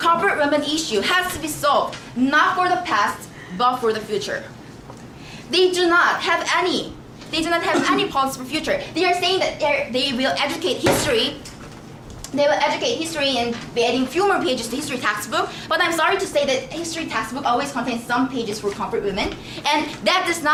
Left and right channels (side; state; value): both; identical; correlation 1.00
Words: women issue has to be solved not for the past, but for the future. They do not have any policy for future. They are saying that they will educate history. They will educate history and be adding few more pages to history textbook. But I'm sorry to say that history textbook always contains some pages for comfort women, and that does